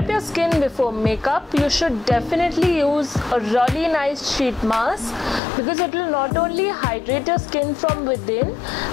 your skin before makeup, you should definitely use a really nice sheet mask, because it will not only hydrate your skin from within,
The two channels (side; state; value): right; drops out; at 5.4 s